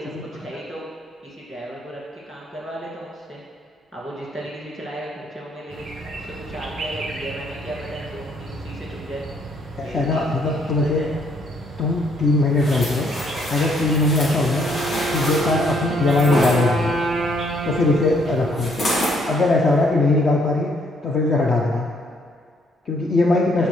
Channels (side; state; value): both; normal; correlation 0.68